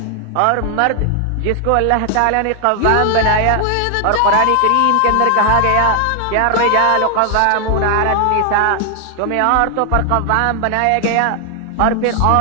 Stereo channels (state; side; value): different; both; correlation 0.00